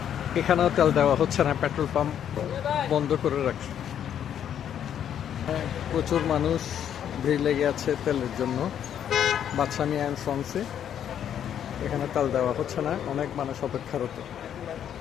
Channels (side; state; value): right; quieter; 9.5 dB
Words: এখানেও তেল দেওয়া হচ্ছে না, পেট্রোল পাম্প বন্ধ করে রাখছে। হ্যাঁ, প্রচুর মানুষ ভিড় লেগে আছে তেলের জন্য। বাদশামী অ্যান্ড সন্সে এখানে তেল দেওয়া হচ্ছে না, অনেক মানুষ অপেক্ষারত।